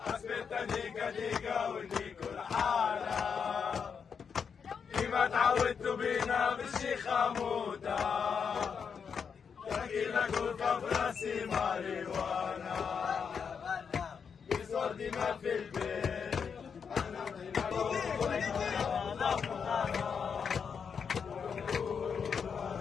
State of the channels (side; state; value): right; quieter; 6.5 dB